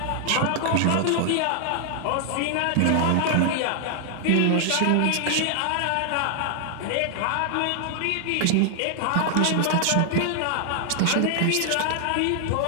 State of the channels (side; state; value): both; different; correlation 0.00